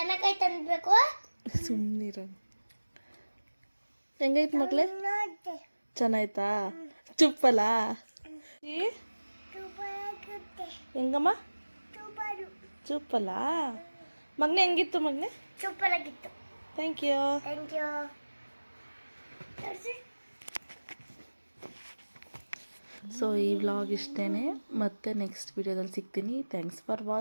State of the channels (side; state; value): both; inverted; correlation -1.00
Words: ಅನ್ಬೇಕು. ಸುಮ್ಮನಿರ. ಹೆಂಗೈತೆ ಮಕ್ಳೇ? ಚೆನ್ನಾಯ್ತಾ? ಚುಪ್ಪಲ್ಲ ಹೆಂಗಮ್ಮ? ಚುಪ್ಪಲ್ಲ ಮಗನೇ. ಹೆಂಗಿತ್ತು ಮಗನೇ? ಸೂಪರ್ ಆಗಿತ್ತು. Thank you. ಸೊ ಈ ವ್ಲಾಗ್ ಇಷ್ಟೇ. ಮತ್ತೆ ನೆಕ್ಸ್ಟ್ ವಿಡಿಯೋದಲ್ಲಿ ಸಿಗ್ತೀನಿ. Thanks for